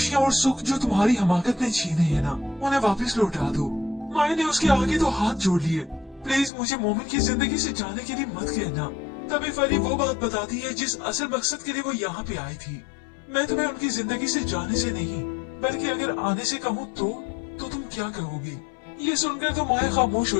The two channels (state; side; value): drops out; right; at 6.5 s